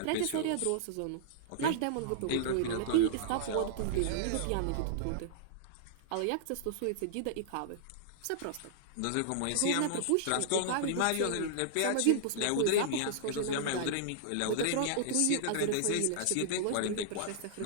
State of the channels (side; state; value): both; different; correlation -0.01